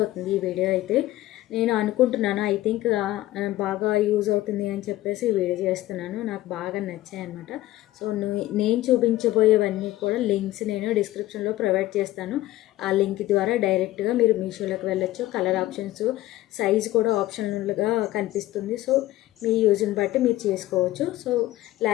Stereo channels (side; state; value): right; quieter; 15.9 dB